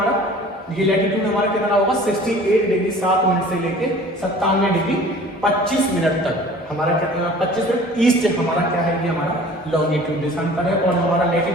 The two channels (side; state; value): both; normal; correlation 0.46